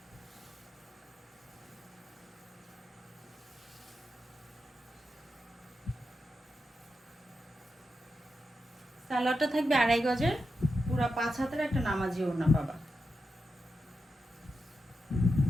সালোয়ারটা থাকবে 2.5 গজের, পুরো 5 হাতের একটা নামাজি ওড়না পাবা।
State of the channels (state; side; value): normal; both; correlation 0.88